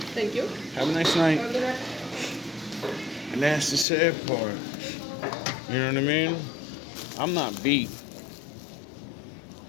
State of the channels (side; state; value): right; drops out; at 3.9 s